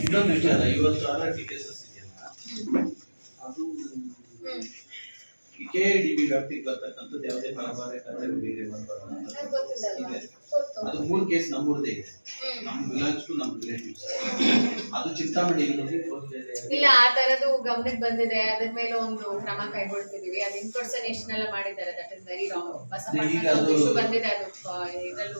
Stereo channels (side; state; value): both; inverted; correlation -1.00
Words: ಇನ್ನೊಂದು ವಿಚಾರ, ಇವತ್ತು ಆರ್ಟಿ ಕೇಸಸ್ ಇದೆಯಲ್ಲ, ಅದು KIDB ವ್ಯಾಪ್ತಿಗೆ ಬರ್ತಕ್ಕಂಥದ್ದು ಯಾವುದೇ ಪರಭಾರೆ ಕತೆ ಬೇರೆ ಇದೆ. ಅದು 3 ಕೇಸ್ ನಮ್ಮೂರದೇ ಇದೆ. ನಮ್ಮ ಬಿಲಾಂಗ್ಸ್ ಟು ನಮ್ಮ ರಿಲೇಟಿವ್ಸ್. ಅದು ಚಿಂತಾಮಣಿ ಇಲ್ಲ ಆ ತರದ್ದು ಗಮನಕ್ಕೆ ಬಂದಿದೆ. ಅದ್ರ ಮೇಲೆ ಒಂದು ಕ್ರಮ ಕೈಗೊಳ್ತಿದೀವಿ. ಅದು ಇನ್ಪರ್ಸನೇಷನ್ ಎಲ್ಲ ಮಾಡಿದ್ದಾರೆ. That is very wrong. Basavanna ಬಂದಿದೆ, ಅದು ಇದ್ರಲ್ಲೂ